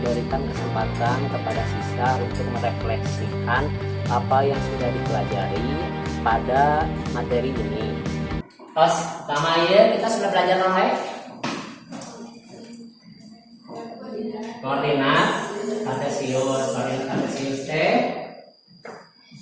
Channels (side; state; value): both; identical; correlation 1.00